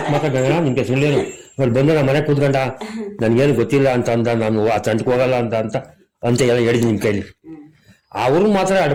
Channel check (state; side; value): identical; both; correlation 1.00